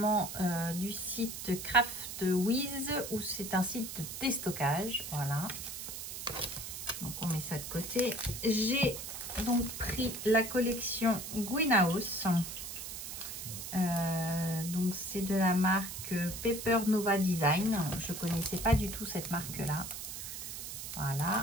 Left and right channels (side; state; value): right; noise; hiss, 7 dB below the sound